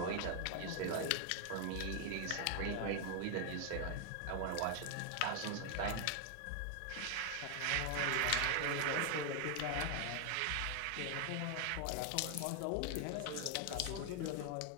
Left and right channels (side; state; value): both; different; correlation 0.00